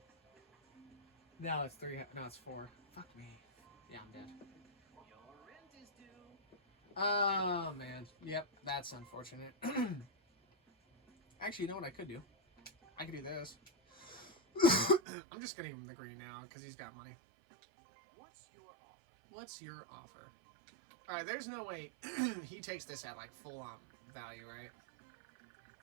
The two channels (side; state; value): left; drops out; at 15.0 s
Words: No, it's 3... No, it's 4. Fuck me. Yeah, I'm dead. Your rent is due. Oh, man. Yep, that's unfortunate. Actually, you know what I could do? I could do this. I'm just gonna give him the green now, because he's got money. What's your offer? What's your offer? Alright, there's no way he takes this at, like, full-on value, right?